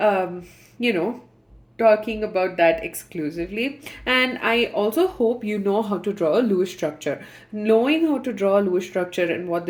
know, talking about that exclusively, and I also hope you know how to draw a Lewis structure. Knowing how to draw a Lewis structure and what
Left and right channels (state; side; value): identical; both; correlation 1.00